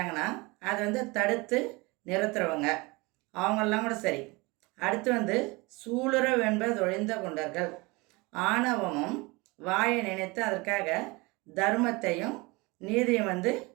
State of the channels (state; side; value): quieter; left; 24.9 dB